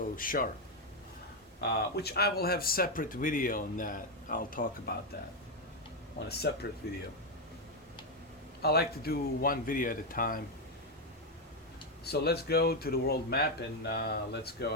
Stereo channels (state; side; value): normal; both; correlation 0.05